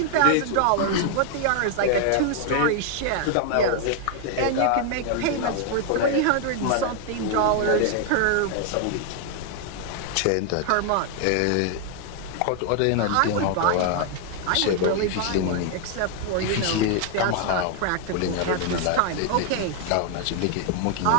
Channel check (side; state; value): both; different; correlation 0.00